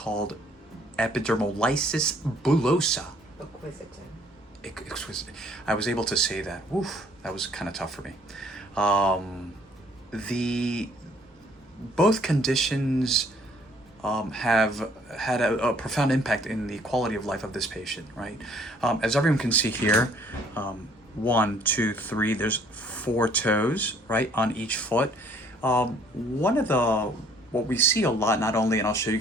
epidermolysis bullosa. Exquisite. I was able to say that. Oof, that was kind of tough for me. Both conditions have had a profound impact in the quality of life of this patient, right? As everyone can see here, 1, 2, 3, there's 4 toes, right, on each foot. What we see a lot, not only, and I'll show you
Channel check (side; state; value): both; normal; correlation 0.60